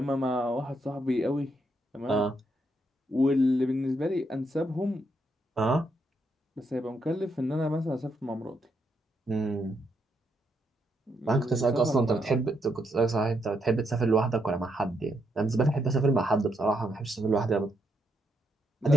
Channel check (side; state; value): both; normal; correlation 0.78